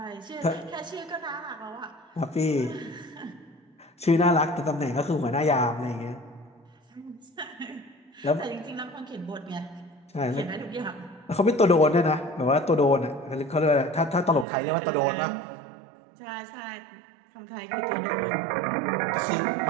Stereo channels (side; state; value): left; drops out; at 14.5 s